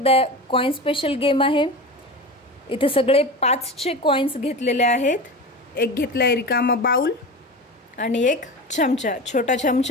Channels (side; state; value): both; normal; correlation 0.28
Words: कॉइन स्पेशल गेम आहे। इथे सगळे 5चे कॉइन्स घेतलेले आहेत। एक घेतलाय रिकामा बाउल आणि एक चमचा, छोटा